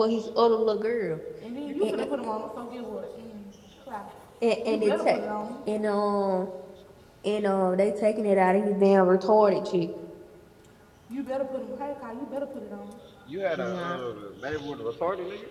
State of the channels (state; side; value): identical; both; correlation 1.00